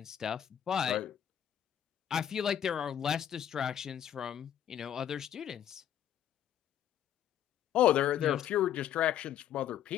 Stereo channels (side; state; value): right; quieter; 10.2 dB